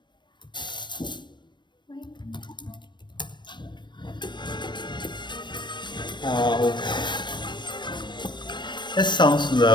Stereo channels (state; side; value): late; right; 0.22 ms